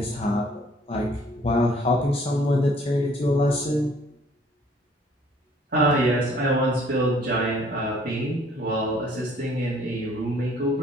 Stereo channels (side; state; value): both; normal; correlation 0.58